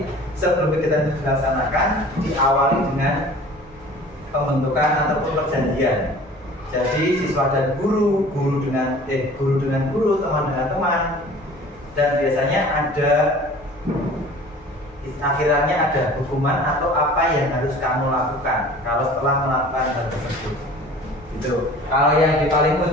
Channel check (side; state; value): both; normal; correlation 0.45